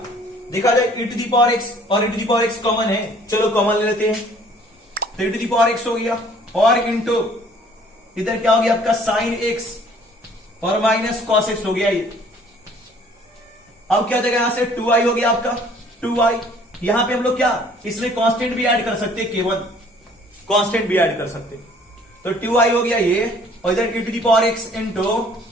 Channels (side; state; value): both; normal; correlation 0.56